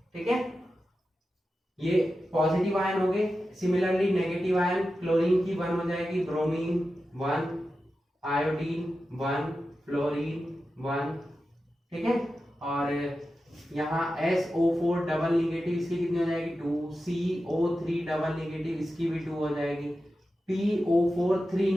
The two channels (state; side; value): normal; both; correlation 0.92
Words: ठीक है, ये पॉजिटिव आयन हो गए। सिमिलरली नेगेटिव आयन, क्लोरीन की 1 हो जाएगी, ब्रोमीन 1, आयोडीन 1, फ्लोरीन 1। ठीक है, और यहाँ SO4 डबल निगेटिव, इसकी कितनी हो जाएगी 2, CO3 डबल निगेटिव, इसकी भी 2 हो जाएगी, PO4 3